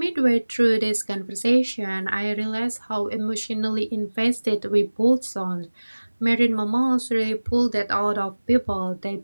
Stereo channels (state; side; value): inverted; both; correlation -1.00